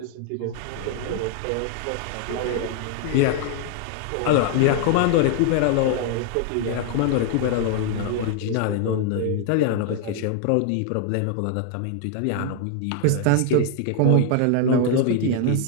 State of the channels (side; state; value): both; different; correlation 0.00